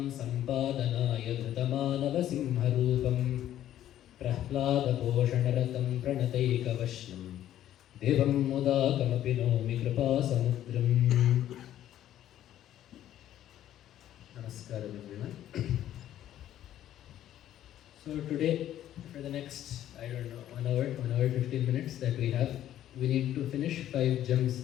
सम्पादनाय धृतमानवसिंहरूपं प्रह्लादपोषणरतं प्रणतैकवश्यं देवं मुदाकमपि नौमि कृपासमुद्रम्। Namaskaram everyone. So today, for the next, 1 hour 15 minutes that we have, we need to finish 5 gems.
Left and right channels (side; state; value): right; quieter; 12.0 dB